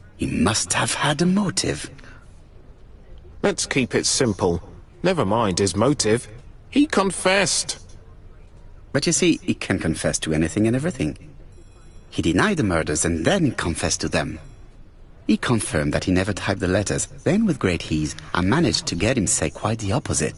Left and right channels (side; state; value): both; identical; correlation 1.00